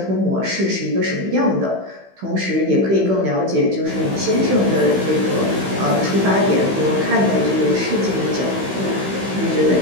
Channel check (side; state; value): left; late; 16 ms